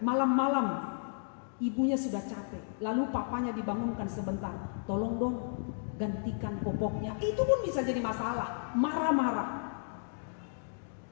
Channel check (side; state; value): right; silent; digital silence